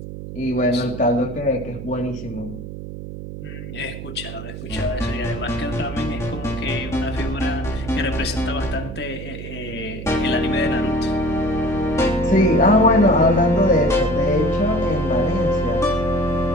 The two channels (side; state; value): right; noise; hum, 10 dB below the sound